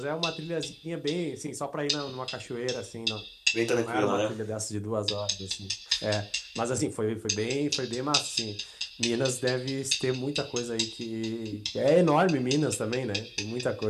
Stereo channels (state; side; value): identical; both; correlation 1.00